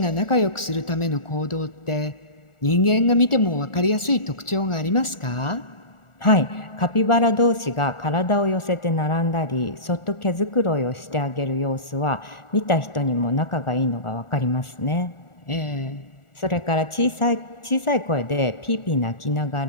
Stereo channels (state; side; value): late; right; 1.4 ms